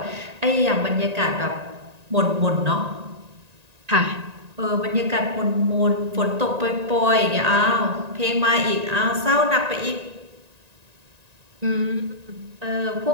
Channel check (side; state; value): left; late; 1.9 ms